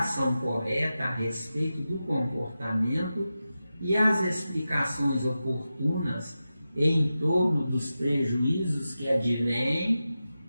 correta a respeito do comportamento e as explicações oportunas em torno dos prejuízos que advêm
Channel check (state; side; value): inverted; both; correlation -0.92